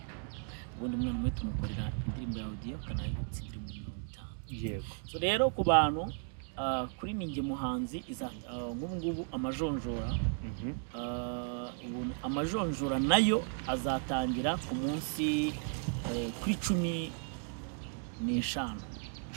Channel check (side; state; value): left; silent; 54 dB below the other